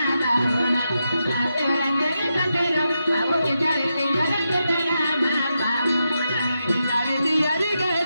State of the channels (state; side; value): inverted; both; correlation -0.86